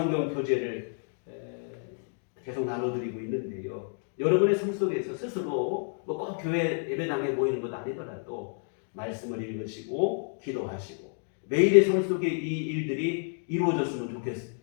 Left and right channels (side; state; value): right; silent; 58 dB below the other